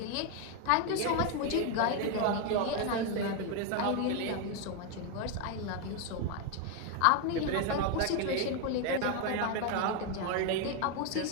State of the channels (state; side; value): different; both; correlation 0.01